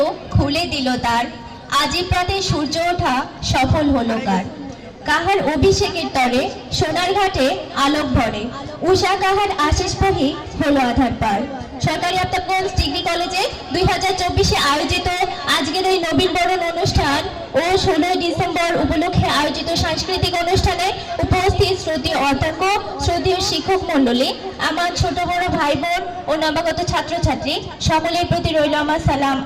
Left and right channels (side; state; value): both; identical; correlation 1.00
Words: খুলে দিল তার, আজি প্রাতে সূর্য ওঠা সফল হলো কার। কাহার অভিষেকের তরে সোনার ঘাটে আলোক ভরে, উষা কাহার আশিস বহি হলো আধার পার। সরকারি আফতাবগঞ্জ ডিগ্রি কলেজে 2024-এ আয়োজিত আজকের এই নবীন বরণ অনুষ্ঠান ও 16 ডিসেম্বর উপলক্ষে আয়োজিত সাংস্কৃতিক অনুষ্ঠানে উপস্থিত শ্রদ্ধেয় অধ্যক্ষ, শ্রদ্ধেয় শিক্ষক মণ্ডলী, আমার ছোট বড় ভাই বোন ও নবাগত ছাত্রছাত্রী সকলের প্রতি রইল আমার সালাম,